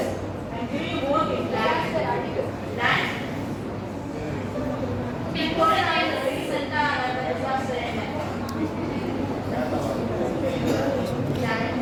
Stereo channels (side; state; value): both; identical; correlation 1.00